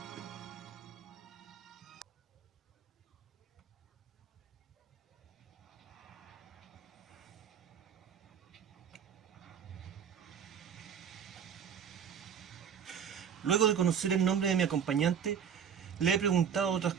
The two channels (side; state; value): left; quieter; 7.7 dB